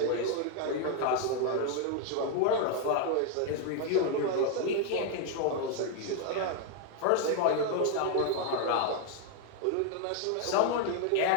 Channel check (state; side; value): different; both; correlation 0.00